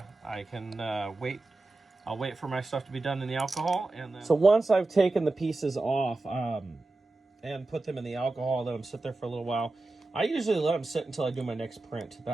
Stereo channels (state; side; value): quieter; left; 3.1 dB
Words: can wait. I'll wait for my stuff to be done in the alcohol. And then... So once I've taken the pieces off and put them in the alcohol, let them sit there for a little while. I usually let them sit until I do my next print.